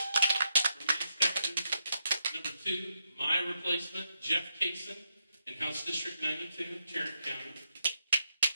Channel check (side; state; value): both; inverted; correlation -0.82